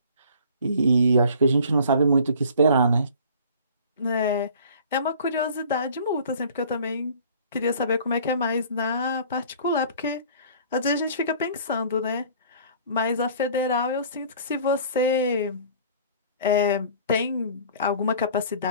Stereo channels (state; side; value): inverted; both; correlation -0.49